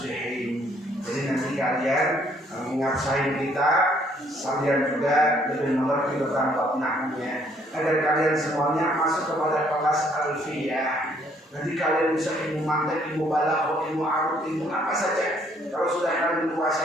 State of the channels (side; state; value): both; normal; correlation 0.65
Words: Jadi nanti kalian mengasain kita sambil juga lebih mengerti tentang bab nahwunya, agar kalian semuanya masuk kepada kelas alfiyah. Nanti kalian bisa ilmu mantek, ilmu balaghah, ilmu arut, ilmu apa saja. Kalau sudah kalian